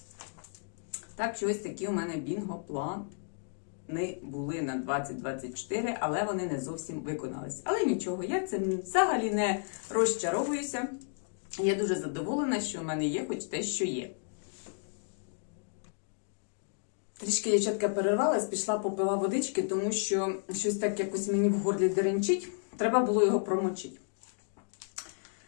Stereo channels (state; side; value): silent; right; digital silence